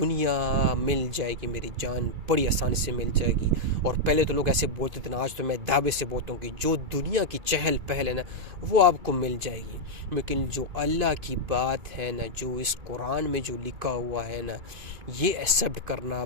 مل جائے گی, میری جان بڑی آسانی سے مل جائے گی. اور پہلے تو لوگ ایسے بولتے تھے نا, آج تو میں دعوے سے بولتا ہوں کہ جو دنیا کی چہل پہل ہے نا وہ آپ کو مل جائے گی. لیکن جو اللہ کی بات ہے نا, جو اس قرآن میں جو لکھا ہوا ہے نا, یہ ایکسیپٹ کرنا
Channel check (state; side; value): late; left; 2.5 ms